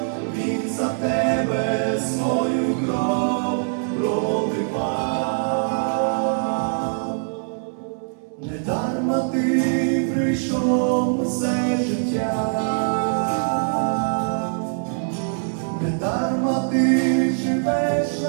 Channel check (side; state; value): left; silent; 64 dB below the other